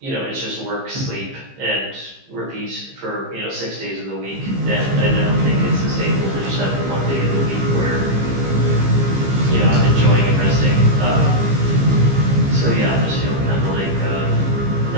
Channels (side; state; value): left; late; 15 ms